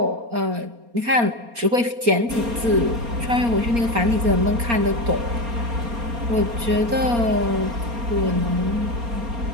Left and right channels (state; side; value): late; left; 4.3 ms